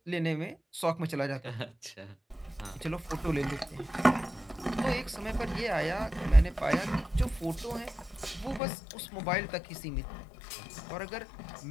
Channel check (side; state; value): right; drops out; at 8.6 s